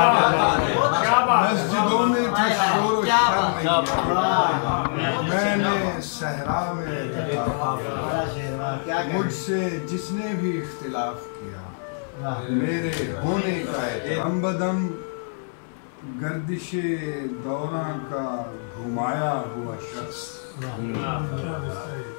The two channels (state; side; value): silent; right; 62 dB below the other